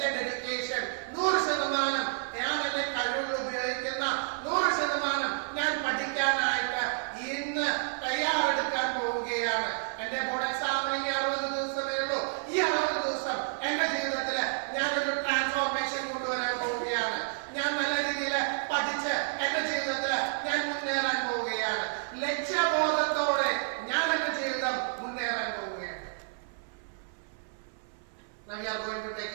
ഡെഡിക്കേഷൻ 100% ഞാൻ എന്റെ കഴിവുകൾ ഉപയോഗിക്കുന്ന 100% ഞാൻ പഠിക്കാനായിട്ട് ഇന്ന് തയ്യാറെടുക്കാൻ പോവുകയാണ്. എന്റെ ബോർഡ് എക്സാമിന് 60 ദിവസമേ ഉള്ളൂ. ഈ 60 ദിവസം എന്റെ ജീവിതത്തില് ഞാനൊരു ട്രാൻസ്ഫോർമേഷൻ കൊണ്ടുവരാൻ പോവുകയാണ്. ഞാൻ നല്ല രീതിയിൽ പഠിച്ച് എന്റെ ജീവിതത്തില് ഞാൻ മുന്നേറാൻ പോവുകയാണ്. ലക്ഷ്യബോധത്തോടെ ഞാൻ എന്റെ ജീവിതം മുന്നേറാൻ പോവുകയാണ്. Now we are going to take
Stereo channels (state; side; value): silent; left; 58 dB below the other